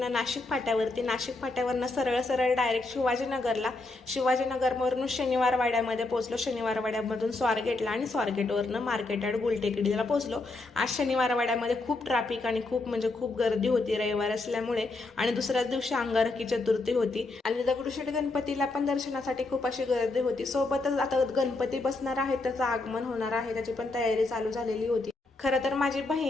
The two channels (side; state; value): right; quieter; 3.2 dB